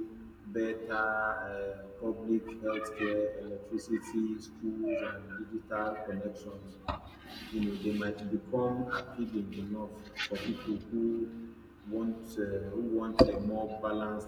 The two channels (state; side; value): identical; both; correlation 1.00